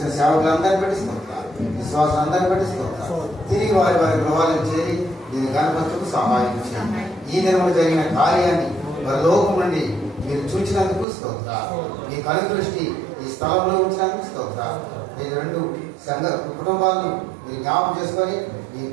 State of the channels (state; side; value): drops out; left; at 11.1 s